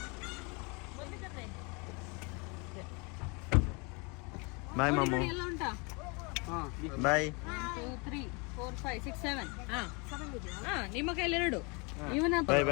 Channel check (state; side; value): quieter; right; 30.7 dB